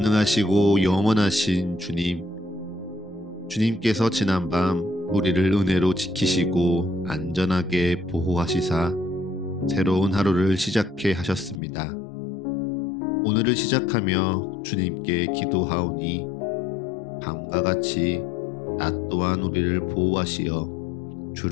영원하신 주님, 주님께서 지난밤 우리를 은혜로 지키시고 안전하게 보호하시사 새로운 하루를 시작해 하셨습니다. 오늘을 시작하며 주님께 기도하오니 밤과 같이 낮 또한 우리를 보호하시어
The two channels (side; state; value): right; drops out; at 11.6 s